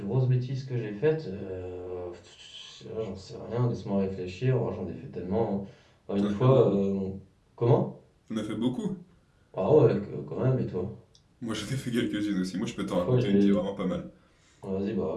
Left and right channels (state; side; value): identical; both; correlation 1.00